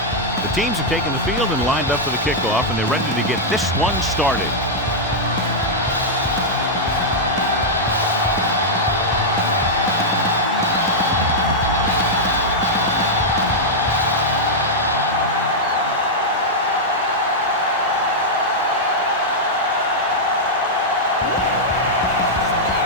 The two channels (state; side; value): normal; both; correlation -0.06